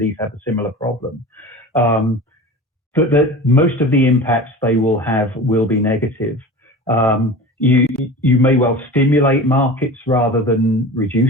have a similar problem, that most of the impacts they will have will be negative. You may well stimulate markets rather than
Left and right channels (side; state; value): both; normal; correlation 0.34